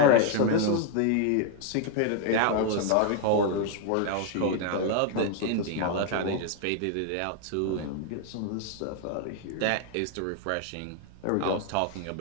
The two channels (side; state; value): both; different; correlation 0.00